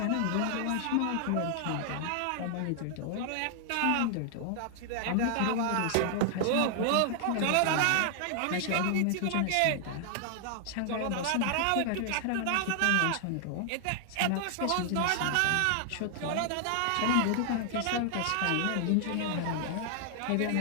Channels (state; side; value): different; both; correlation 0.00